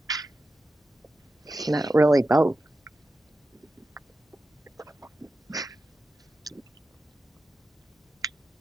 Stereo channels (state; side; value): normal; both; correlation 0.91